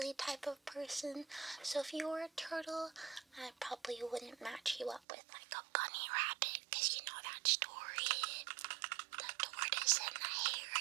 type of person. So if you were a turtle, I probably wouldn't match you up with like a bunny rabbit, because you know that story, the tortoise and the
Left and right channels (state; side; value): drops out; left; at 5.0 s